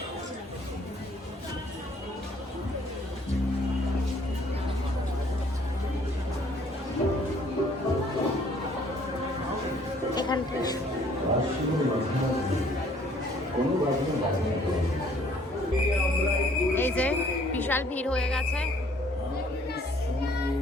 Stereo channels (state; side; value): normal; both; correlation 0.60